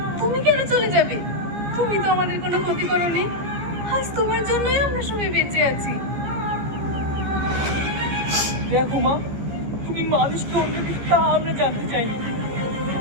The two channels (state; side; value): late; left; 15 ms